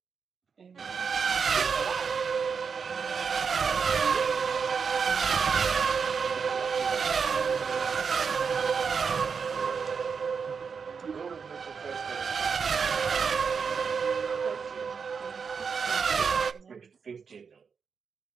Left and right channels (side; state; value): left; quieter; 5.9 dB